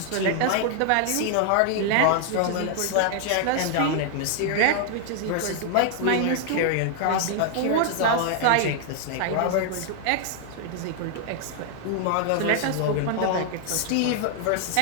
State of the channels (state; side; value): different; both; correlation 0.00